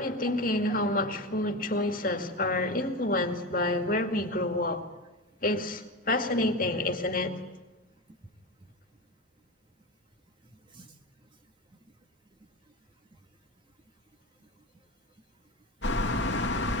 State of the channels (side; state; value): both; normal; correlation 0.22